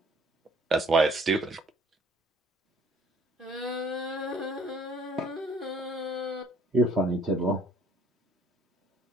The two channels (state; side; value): normal; both; correlation 0.58